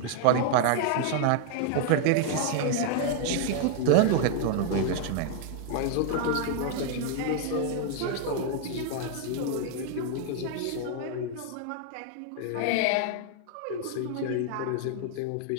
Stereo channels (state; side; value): different; both; correlation 0.00